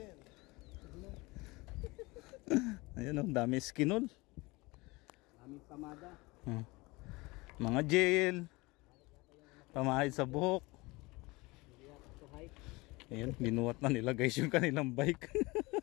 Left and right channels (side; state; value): right; quieter; 23.4 dB